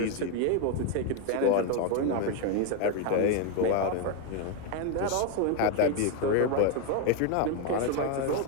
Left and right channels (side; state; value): both; different; correlation 0.01